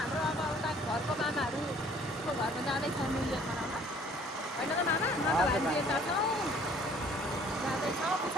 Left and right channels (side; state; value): both; normal; correlation 0.56